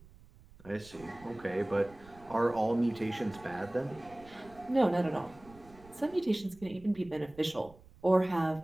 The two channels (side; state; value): right; noise; rumble, 23 dB below the sound